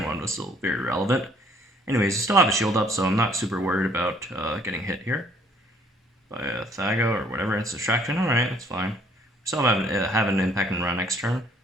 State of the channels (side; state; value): both; normal; correlation 0.62